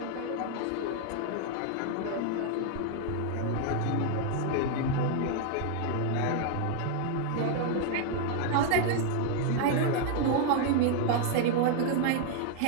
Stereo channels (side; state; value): both; different; correlation 0.00